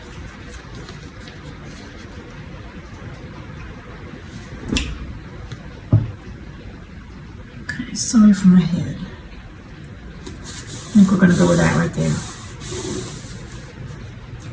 Okay, sorry for my head. I think we're going to go with that right there.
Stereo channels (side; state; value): both; identical; correlation 1.00